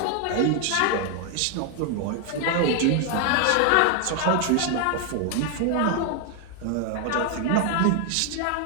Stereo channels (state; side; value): different; both; correlation 0.00